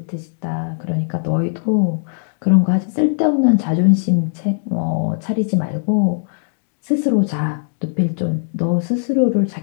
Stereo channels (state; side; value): silent; right; digital silence